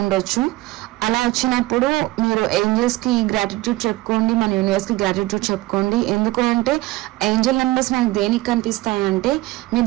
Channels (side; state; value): left; quieter; 19.0 dB